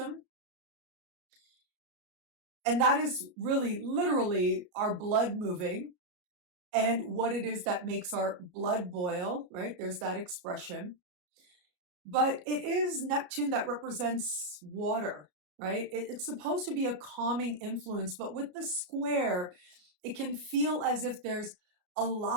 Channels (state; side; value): late; left; 33 ms